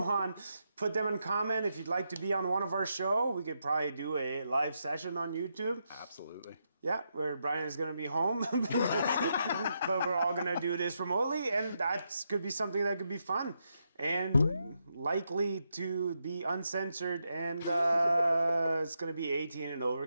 put them in comment. If you'd like to be on one of our show, we could probably do a live session on YouTube. Absolutely. Yeah, where Brian is going to be home, but we're all going to do this remotely, and that could be something that could be fun and likely to be uncensored, and it's going to be 18 and over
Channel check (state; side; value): inverted; both; correlation -0.83